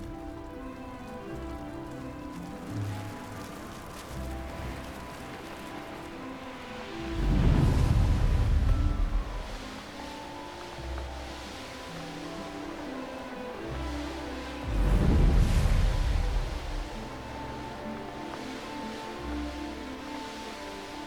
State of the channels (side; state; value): both; identical; correlation 1.00